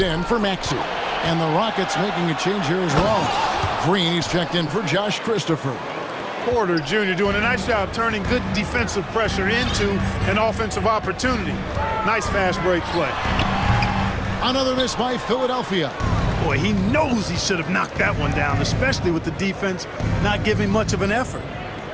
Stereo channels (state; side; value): identical; both; correlation 1.00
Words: in for Maxey. And the Rockets making a change here as well. Green is checked in for Josh Christopher. Porter Jr. doing a nice job turning good defensive pressure into an offensive opportunity. Nice fast break play. Another miss by Philadelphia. Boy, he knows he should have knocked that one down, especially with the defense not giving much of an effort.